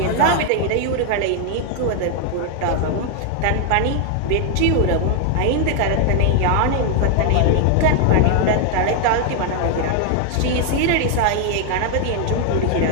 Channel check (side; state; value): both; different; correlation 0.00